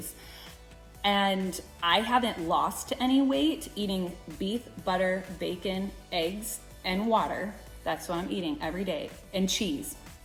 And I haven't lost any weight eating beef, butter, bacon, eggs, and water. That's what I'm eating every day, and cheese.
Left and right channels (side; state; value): both; identical; correlation 1.00